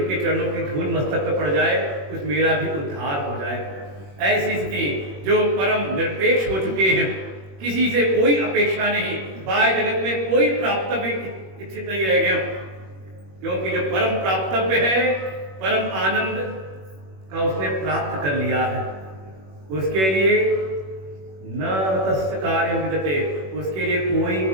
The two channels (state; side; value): late; left; 21 ms